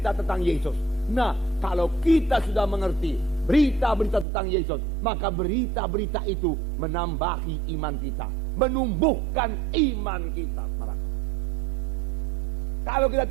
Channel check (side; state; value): left; drops out; at 4.2 s